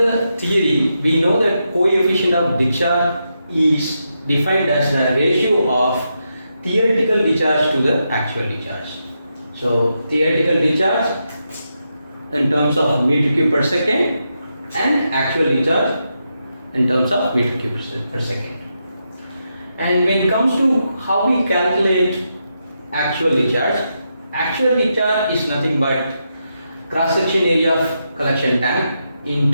theory, we know that coefficient of discharge is defined as the ratio of theoretical discharge to the actual discharge. So, theoretical discharge in terms of meter cube per second and actual discharge in terms of meter cube per second. And when it comes to how we calculate actual discharge is nothing but cross section area of collection tank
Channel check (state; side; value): inverted; both; correlation -0.84